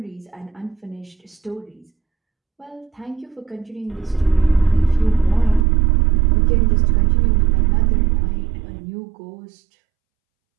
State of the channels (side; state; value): left; drops out; at 5.7 s